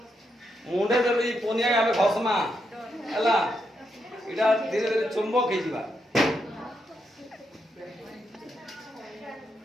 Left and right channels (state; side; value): normal; both; correlation 0.81